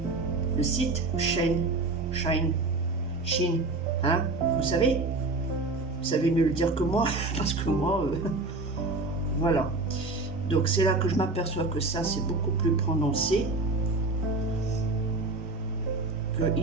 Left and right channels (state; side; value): quieter; left; 3.3 dB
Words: le site Shine, hein, vous savez. Vous savez mieux le dire que moi, parce que moi, voilà. Donc c'est là que je m'aperçois que ça, c'est beaucoup plus prononcé. Que